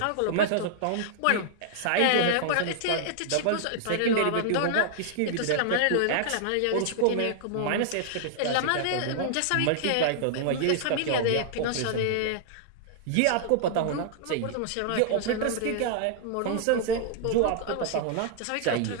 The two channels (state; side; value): different; both; correlation -0.01